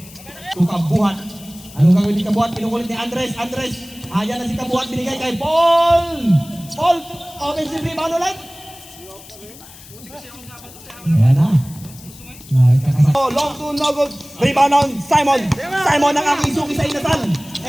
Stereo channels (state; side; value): noise; left; hiss, 19 dB below the sound